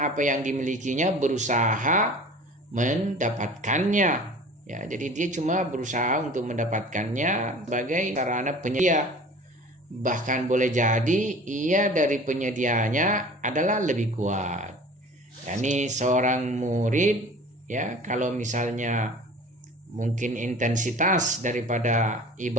yang dimilikinya berusaha mendapatkannya. Ya, jadi dia cuma berusaha untuk mendapatkannya sebagai sarana penyedia. Bahkan boleh jadi ia dari penyedianya adalah lebih kuat. Yani seorang murid, ya, kalau misalnya mungkin intensitas daripada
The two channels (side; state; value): both; normal; correlation 0.42